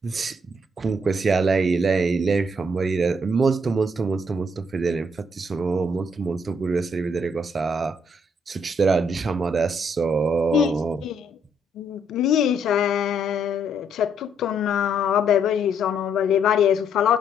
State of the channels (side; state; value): both; normal; correlation 0.71